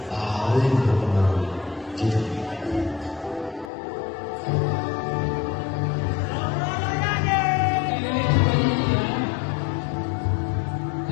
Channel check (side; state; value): right; drops out; at 3.7 s